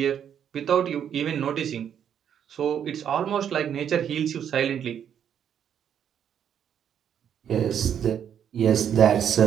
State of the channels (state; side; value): quieter; left; 8.9 dB